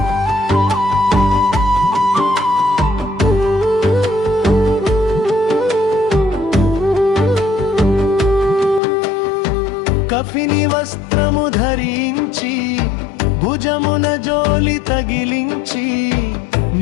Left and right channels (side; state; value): right; drops out; at 8.8 s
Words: కఫిని వస్త్రము ధరించి, భుజమున జోలి తగిలించి,